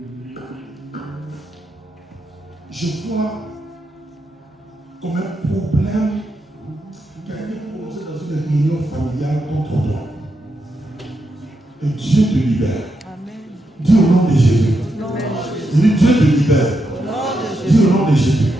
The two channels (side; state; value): both; normal; correlation 0.84